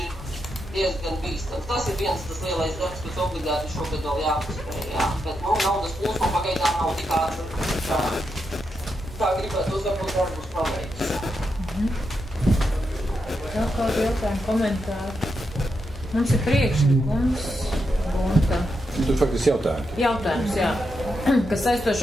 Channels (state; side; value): normal; both; correlation 0.84